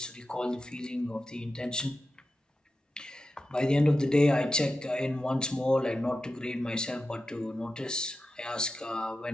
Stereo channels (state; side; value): normal; both; correlation 0.92